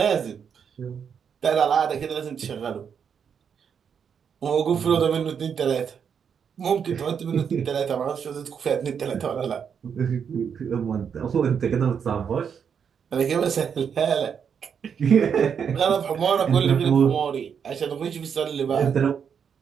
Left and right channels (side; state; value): left; quieter; 7.2 dB